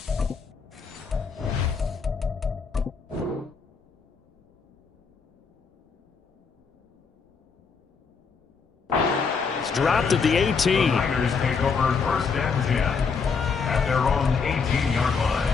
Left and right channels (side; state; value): right; quieter; 5.4 dB